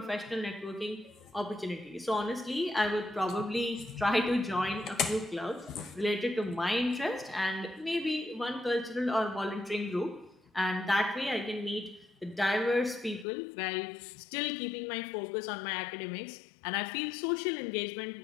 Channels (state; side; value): drops out; right; at 13.2 s